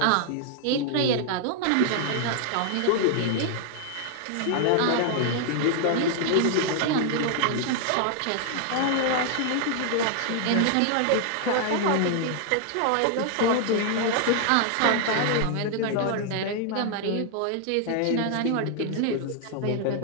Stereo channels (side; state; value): both; different; correlation 0.00